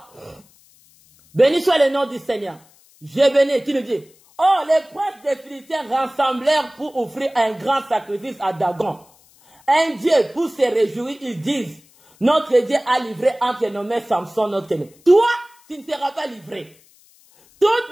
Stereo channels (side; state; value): left; noise; hiss, 29 dB below the sound